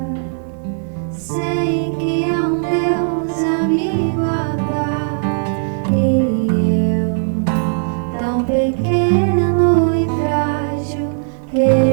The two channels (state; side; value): silent; left; 68 dB below the other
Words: sei que há um Deus a me guardar, e eu, tão pequeno e frágil,